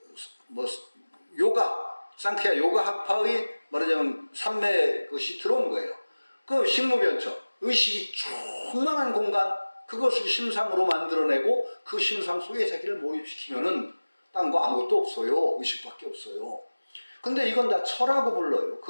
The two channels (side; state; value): both; inverted; correlation -1.00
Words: 상쾌야 요가 학파의 말하자면 삼매 것이 들어온 거예요. 그 식무변처, 의식이 충만한 공간, 그것을 심상으로 만들어내고 그 심상 속에 자기를 몰입시키면은 딴 거 아무것도 없어요. 의식밖에 없어요. 근데 이건 다 철하고 불러요.